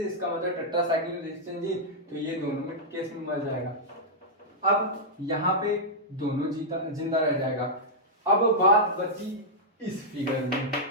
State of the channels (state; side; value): normal; both; correlation -0.08